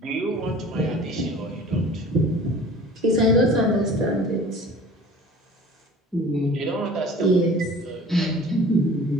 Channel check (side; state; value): both; normal; correlation 0.44